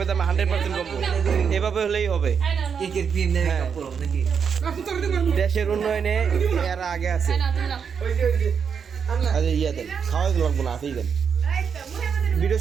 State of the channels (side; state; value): left; quieter; 6.8 dB